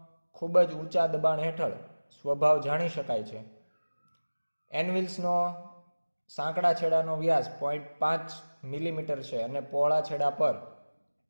ખૂબ જ ઊંચા દબાણ હેઠળ સ્વભાવ જાણી શકાય છે. એનવિલ્સનો સાંકડા છેડાનો વ્યાસ 0.5 મિલીમીટર છે અને પહોળા છેડા પર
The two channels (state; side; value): inverted; both; correlation -1.00